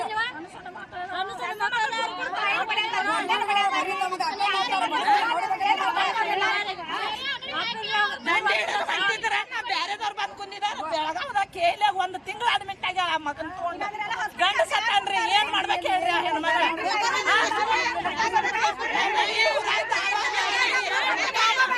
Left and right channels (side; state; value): both; identical; correlation 1.00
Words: ಬ್ಯಾರೆದವ್ರು ಬಂದ್ ಕುಂದಿದಾರ ಬೆಳಗಾವದಾಗ ಕೇಳಿಯಾಗ 1 ತಿಂಗಳು ಅಡ್ಮಿಟ್ ಆಗ್ಯಾರ ಆ ಮಗನ್ ತಗೊಂಡು ಗಂಡ ಸತ್ತನ್ರಿ ಏನ್ ಮಾಡ್ಬೇಕು ಹೇಳ್ರಿ ಆ ಹೆಣ್ಮಗ